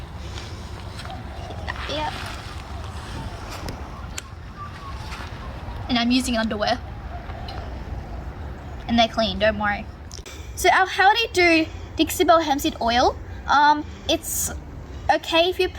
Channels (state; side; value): identical; both; correlation 1.00